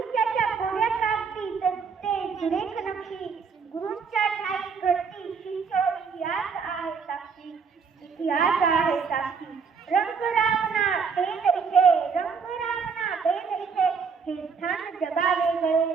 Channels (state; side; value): quieter; left; 5.7 dB